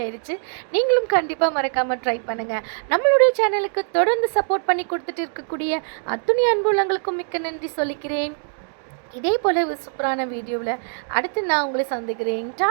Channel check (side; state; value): left; silent; digital silence